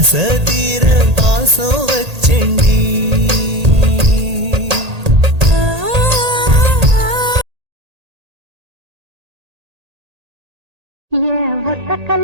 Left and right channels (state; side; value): late; left; 1.8 ms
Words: தீர பாசம் வச்சேண்டி